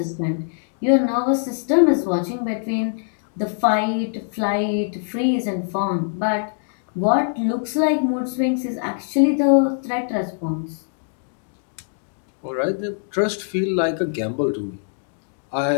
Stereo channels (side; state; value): right; silent; digital silence